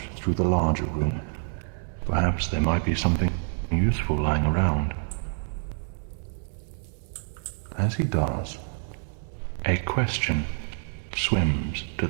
through the larger room. Perhaps there might be something useful lying around. As he does, a question swims to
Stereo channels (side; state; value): left; silent; 59 dB below the other